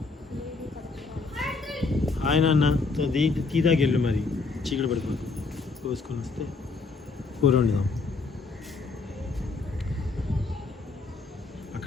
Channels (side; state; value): right; quieter; 4.0 dB